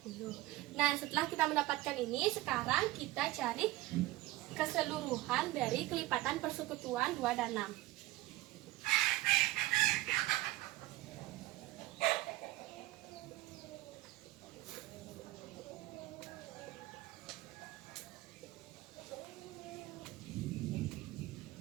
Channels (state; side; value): quieter; left; 18.1 dB